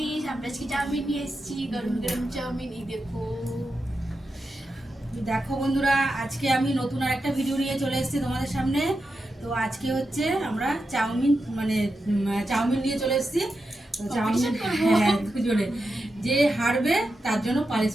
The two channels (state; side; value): normal; both; correlation 0.89